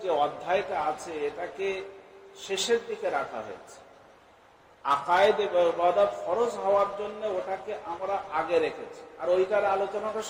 যে অধ্যায়টা আছে, এটাকে শেষের দিকে রাখা হয়েছে। আকায়েদ এবং ইবাদত ফরজ হওয়ার জন্য ওটাকে আমরা আগে রেখেছি, আর ওইটার আলোচনাটা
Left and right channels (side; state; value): both; identical; correlation 1.00